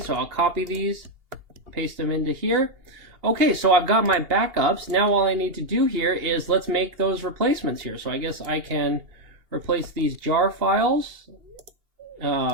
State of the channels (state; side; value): late; left; 2.8 ms